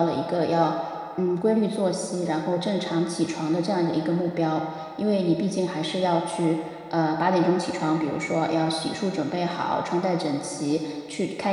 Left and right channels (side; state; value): both; identical; correlation 1.00